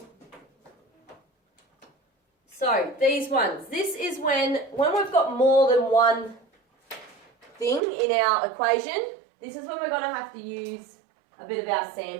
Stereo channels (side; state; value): left; drops out; at 7.8 s